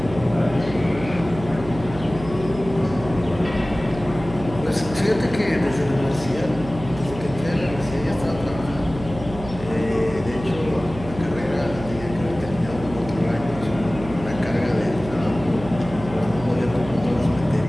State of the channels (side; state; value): right; noise; hum, 12 dB below the sound